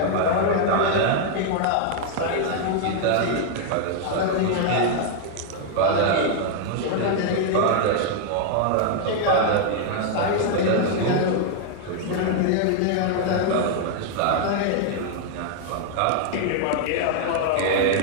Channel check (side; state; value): both; different; correlation 0.00